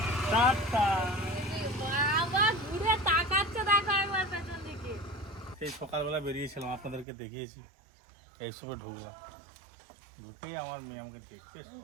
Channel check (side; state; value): left; drops out; at 7.1 s